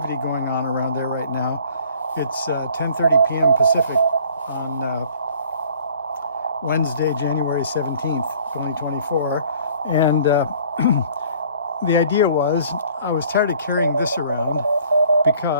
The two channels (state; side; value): inverted; both; correlation -0.54